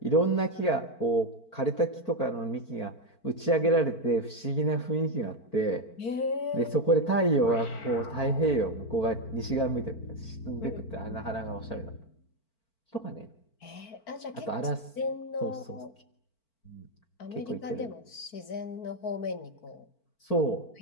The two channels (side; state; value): right; late; 4.5 ms